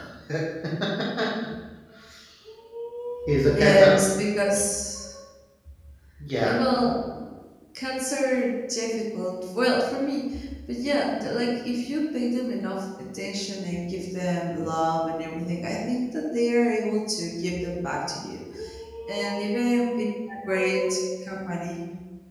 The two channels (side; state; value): both; identical; correlation 1.00